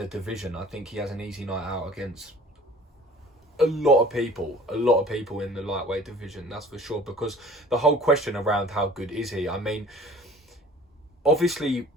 division. I think he has an easy night out against a lot of people in the lightweight division, that's for sure. Because the whole question around how good is he, I mean, obviously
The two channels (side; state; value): both; normal; correlation 0.48